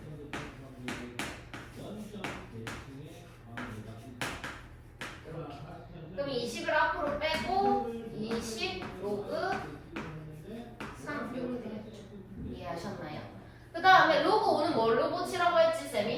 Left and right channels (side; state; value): both; identical; correlation 1.00